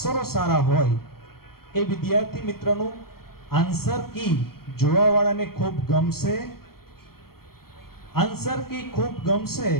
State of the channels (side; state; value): right; late; 0.94 ms